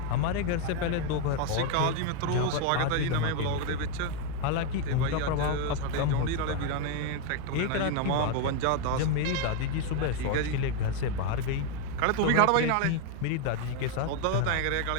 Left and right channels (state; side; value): different; both; correlation 0.01